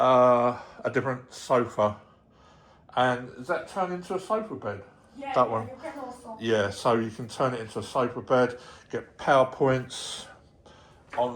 different sofa. And is that turned into a sofa bed? Yeah, that one. You can also. Yeah, so you can turn it into a sofa bed, get PowerPoints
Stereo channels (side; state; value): both; identical; correlation 1.00